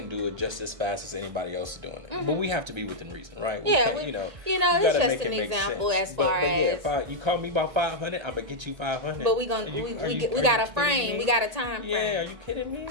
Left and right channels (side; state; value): left; late; 1.8 ms